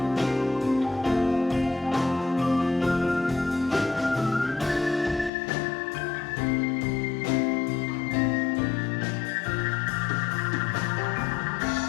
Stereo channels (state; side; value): drops out; right; at 5.3 s